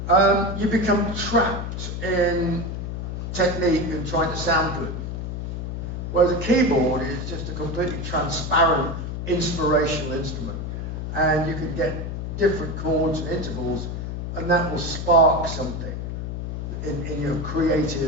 you become trapped in technique and trying to sound good. Whereas a keyboard is just a completely transparent, inspirational instrument. And you can get different chords and intervals, and that will spark something in your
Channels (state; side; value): noise; left; hum, 5 dB below the sound